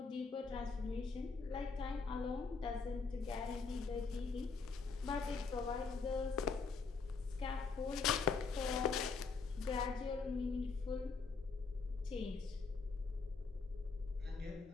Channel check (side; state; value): right; quieter; 4.6 dB